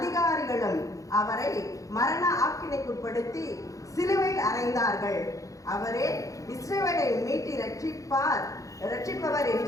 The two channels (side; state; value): right; late; 0.16 ms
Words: அவரை மரண ஆக்கினைக்குட்படுத்தி சிலுவையில் அறைந்தார்கள். அவரே இஸ்ரவேலை மீட்டி ரட்சிப்பவர்